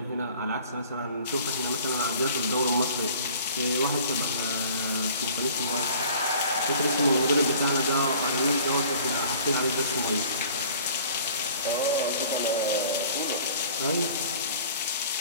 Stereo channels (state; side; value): inverted; both; correlation -0.48